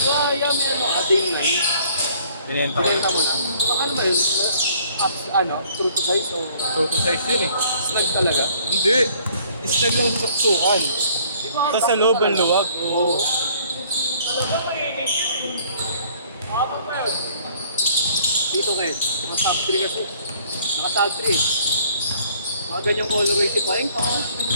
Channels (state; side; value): inverted; both; correlation -0.59